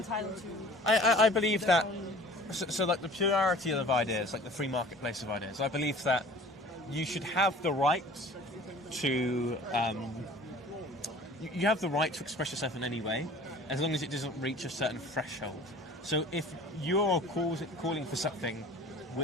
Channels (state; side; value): normal; both; correlation 0.46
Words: to? I believe that. So like the plurality of ideas, like the free marketplace of ideas. I believe that you should have the right to. You have the right to express yourself in any way, as long as it doesn't reach a certain threshold. So if you're calling for something